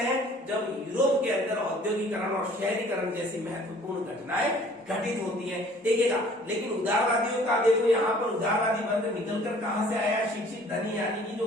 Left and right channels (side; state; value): both; normal; correlation 0.53